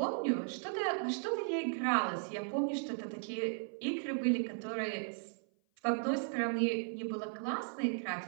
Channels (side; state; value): left; silent; 54 dB below the other